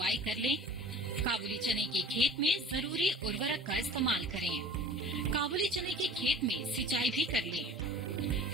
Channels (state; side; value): normal; both; correlation 0.44